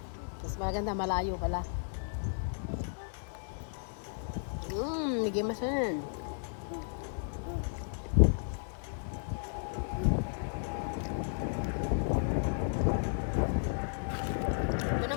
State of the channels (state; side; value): silent; right; digital silence